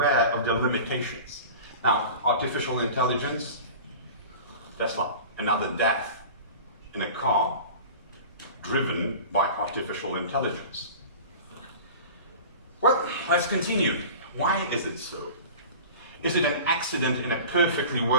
of their limitations. Now, artificial intelligence, Tesla, another death in a car driven by artificial intelligence. Well, let's continue. Why is it so? Is it an accident in a perfectly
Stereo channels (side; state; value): both; inverted; correlation -0.38